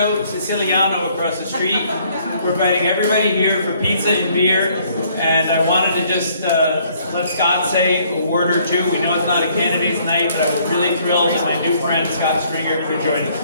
Siciliano across the street. We're inviting everybody here for pizza and beer, and I wanted to just let Scott say a word or two. We know it's not a candidate's night, but I was really thrilled that my new friend Scott Stringer could join us.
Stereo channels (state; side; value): inverted; both; correlation -0.63